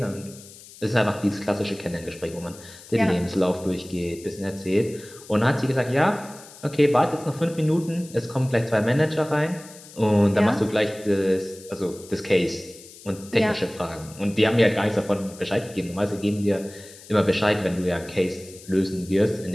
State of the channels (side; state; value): left; noise; hiss, 19 dB below the sound